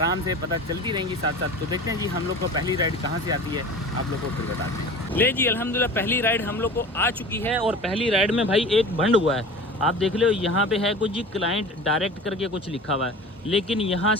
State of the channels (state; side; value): normal; both; correlation 0.37